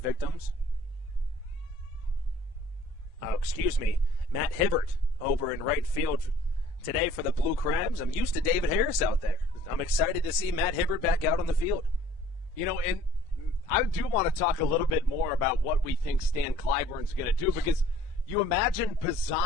victims. Oh, excuse me, Matt Hibbert over in right field today for the Blue Crabs. I'm used to David Harris out there. I'm excited to see Matt Hibbert back out on the field. You know, and I do want to talk a little bit more about what we think Stan Clyburn's going to do, because you imagine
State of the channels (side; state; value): both; normal; correlation 0.55